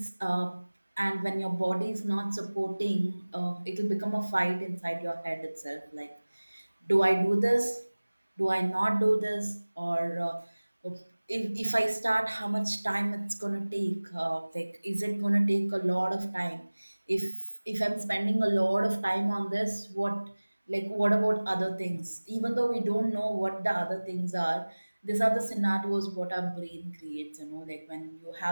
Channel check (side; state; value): both; inverted; correlation -1.00